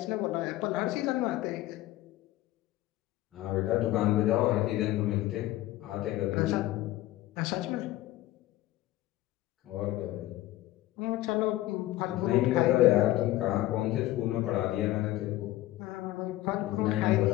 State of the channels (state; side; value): quieter; right; 15.9 dB